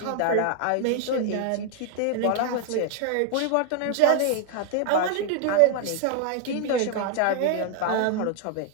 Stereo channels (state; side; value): different; both; correlation 0.00